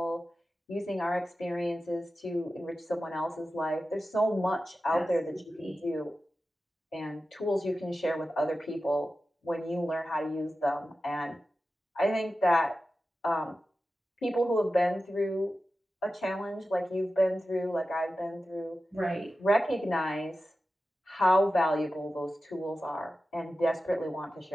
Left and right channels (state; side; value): normal; both; correlation 0.93